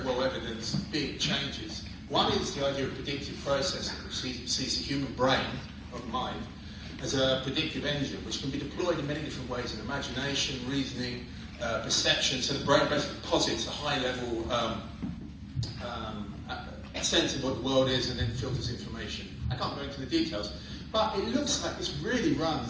well evidenced big changes. One is the idea of predictive processing, which sees the human brain, or the mind, as a predictive engine, which can be deployed in many different ways in imagination, reasoning, perception. So the brain basically posits a high-level sense of what the world is and then filters information. I can't go into the details, but it looks like this really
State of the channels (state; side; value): identical; both; correlation 1.00